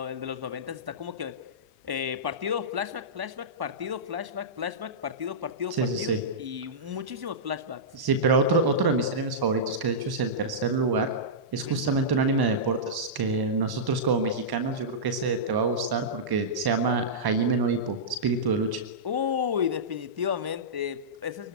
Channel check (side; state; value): left; late; 1.1 ms